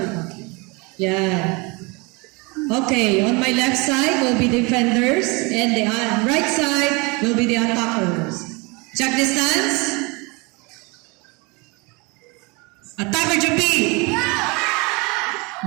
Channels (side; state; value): left; quieter; 28.1 dB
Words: Yeah. Okay, on my left side will be defenders and the right side will be the attackers. Check the stance. Attacker Jubi.